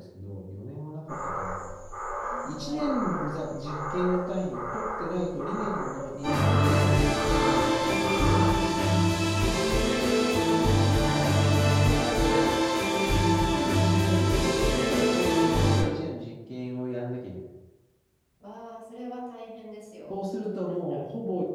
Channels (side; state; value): both; identical; correlation 1.00